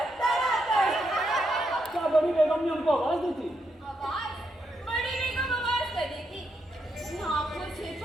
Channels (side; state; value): both; normal; correlation 0.80